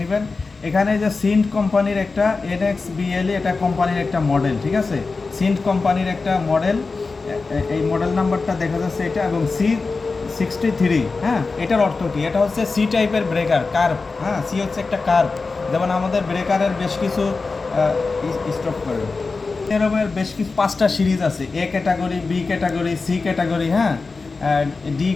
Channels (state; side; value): quieter; right; 4.1 dB